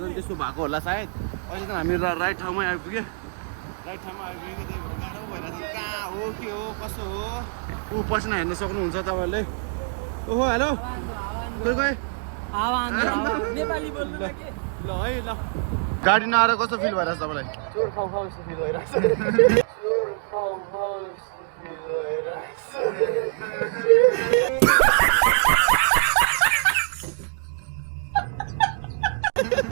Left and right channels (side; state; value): left; silent; 62 dB below the other